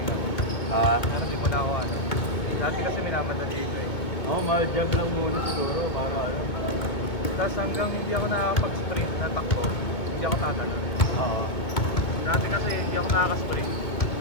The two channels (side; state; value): right; late; 2.4 ms